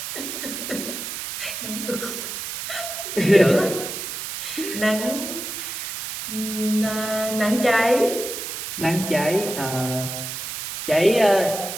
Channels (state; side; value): noise; right; hiss, 6 dB below the sound